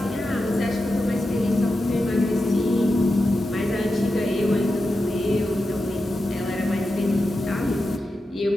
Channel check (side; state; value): both; normal; correlation 0.90